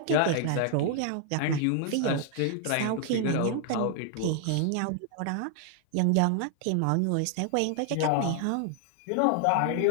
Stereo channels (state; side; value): different; both; correlation 0.00